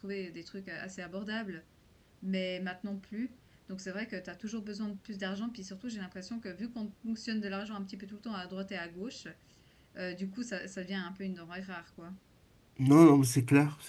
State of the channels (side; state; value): both; identical; correlation 1.00